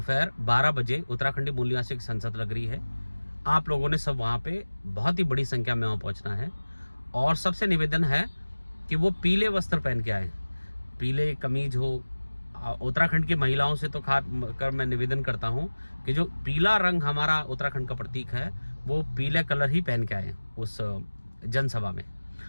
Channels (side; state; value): both; inverted; correlation -1.00